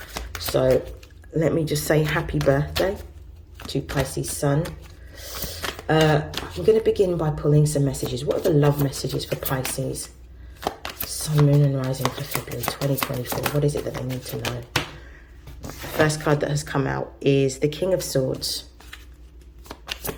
So let me just say happy birthday to Pisces sun. I'm going to begin by pulling some messages. What are the love messages for Pisces Sun, Moon and Rising for February 2024? What is it that they need to know? The first card that has come out is the King of Swords.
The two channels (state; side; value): identical; both; correlation 1.00